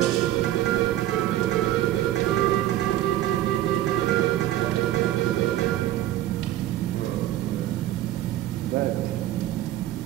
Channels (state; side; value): quieter; left; 13.7 dB